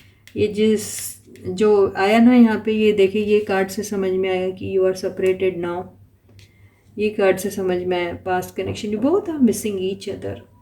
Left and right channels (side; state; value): both; identical; correlation 1.00